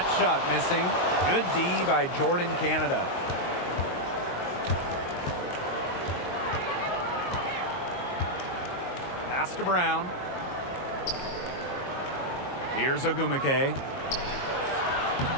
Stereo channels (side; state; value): right; late; 22 ms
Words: shot missing. Good D by Jordan Canada. Pass to Brown. Here's Agumake.